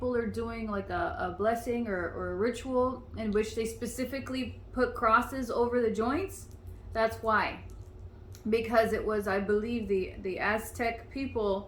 are doing like a blessing or a ritual in which they specifically put crosses over the joints, that's why. Because it was, I believe, the Aztec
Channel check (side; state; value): both; identical; correlation 1.00